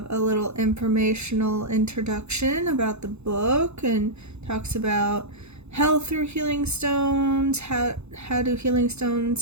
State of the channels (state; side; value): late; left; 0.81 ms